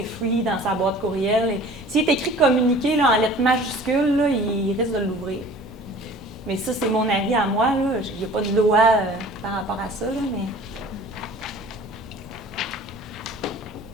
free dans sa boîte courriel. S'il est écrit communiqué là, en lettres majuscules, là, il risque de l'ouvrir. Mais ça, c'est mon avis à moi. Il n'y a pas de loi par rapport à ça, là,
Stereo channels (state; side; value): normal; both; correlation 0.46